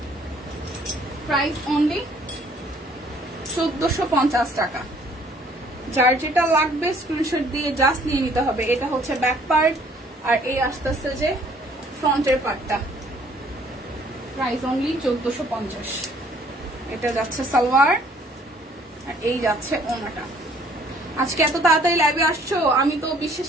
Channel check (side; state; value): both; normal; correlation 0.60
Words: প্রাইস অনলি 1450 টাকা। যার যেটা লাগবে স্ক্রিনশট দিয়ে জাস্ট নিয়ে নিতে হবে। এটা হচ্ছে ব্যাক পার্ট, আর এই আসতেছে যে ফ্রন্টের পার্টটা। Price only 1450। এটা যাচ্ছে সালোয়ার, আর এই যাচ্ছে ওনাটা। আজকে এত তাড়াতাড়ি লাইভে আসছো, আমি তো